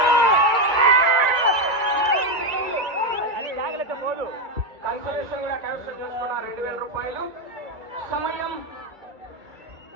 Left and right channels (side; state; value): left; late; 2.4 ms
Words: కన్సలేషన్ కూడా కైవసం చేసుకున్న 2,000 రూపాయలు. సమయం